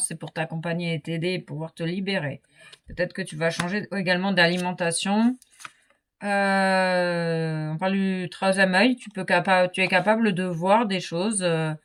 c'est pour t'accompagner et t'aider et pouvoir te libérer. Peut-être que tu vas changer également d'alimentation. On parle du troisième œil. Tu es capable de voir des choses, de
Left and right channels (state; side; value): identical; both; correlation 1.00